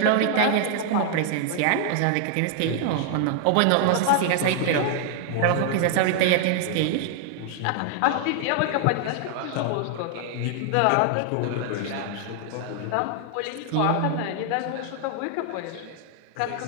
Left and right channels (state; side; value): different; both; correlation 0.00